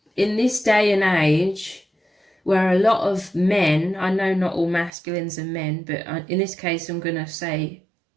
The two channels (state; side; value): drops out; left; at 4.9 s